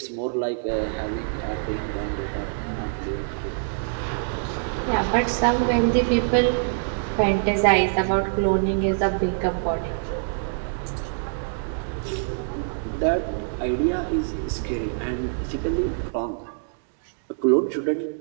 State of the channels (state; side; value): silent; left; digital silence